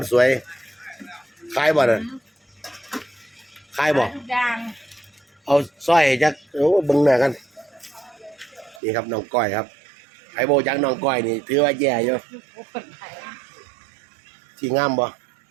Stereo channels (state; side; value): drops out; left; at 8.8 s